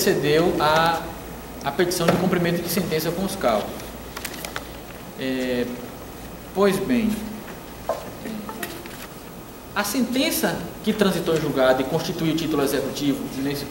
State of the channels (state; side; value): identical; both; correlation 1.00